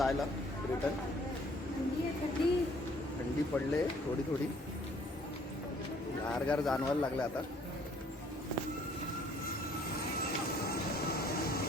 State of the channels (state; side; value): normal; both; correlation 0.60